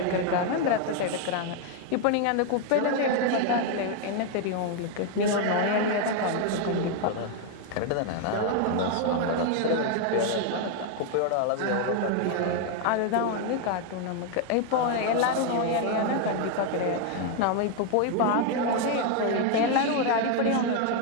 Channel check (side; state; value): both; different; correlation 0.01